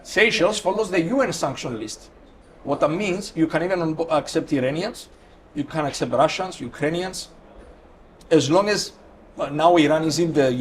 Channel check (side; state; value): both; identical; correlation 1.00